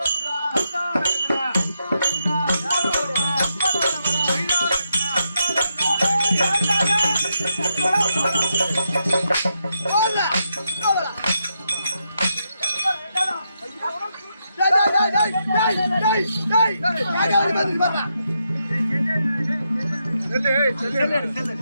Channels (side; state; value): both; inverted; correlation -0.82